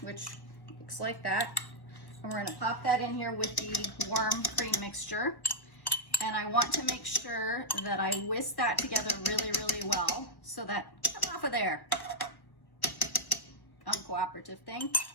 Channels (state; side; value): late; right; 1.3 ms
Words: which looks like that, and we're gonna pop that in here with the warm cream mixture. And I want to make sure that I whisk that together really, really well so that, come off of there, uncooperative thing,